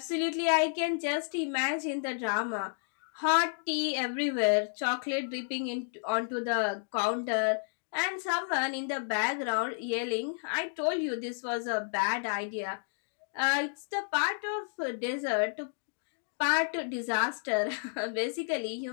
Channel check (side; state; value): right; silent; digital silence